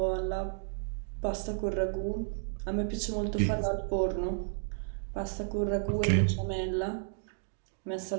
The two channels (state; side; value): silent; left; digital silence